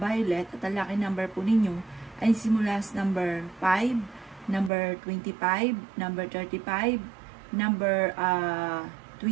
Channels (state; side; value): drops out; left; at 4.7 s